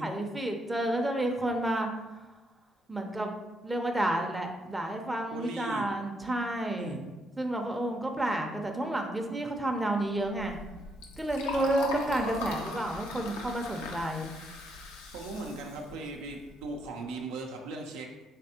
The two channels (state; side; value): normal; both; correlation 0.76